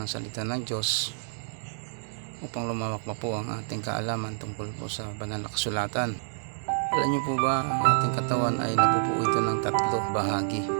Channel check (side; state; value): left; silent; digital silence